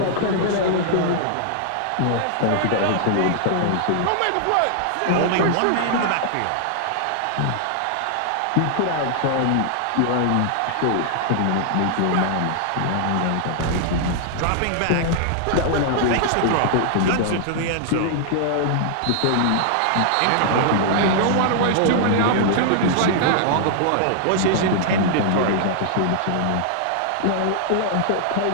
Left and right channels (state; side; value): different; both; correlation -0.01